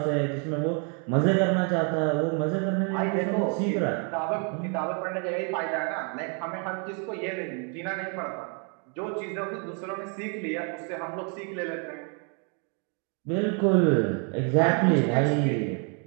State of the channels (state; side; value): quieter; left; 38.7 dB